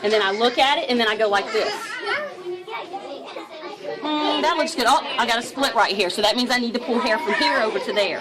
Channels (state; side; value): identical; both; correlation 1.00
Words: And then I look at it, and then I go like this. That looks good. Oh, I got a split right here, so that means I need to pull hair from here over to there.